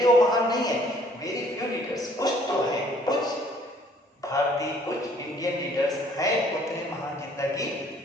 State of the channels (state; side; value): normal; both; correlation 0.59